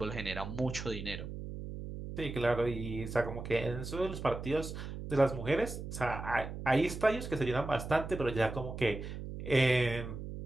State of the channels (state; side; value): noise; right; hum, 8 dB below the sound